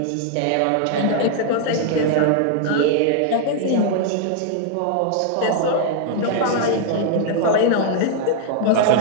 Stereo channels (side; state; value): both; different; correlation 0.00